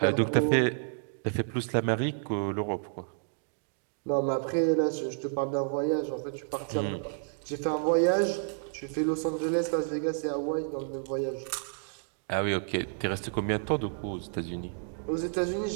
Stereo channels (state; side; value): silent; left; digital silence